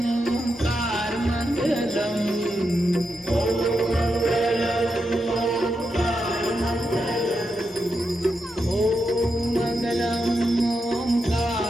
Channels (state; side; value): normal; both; correlation 0.85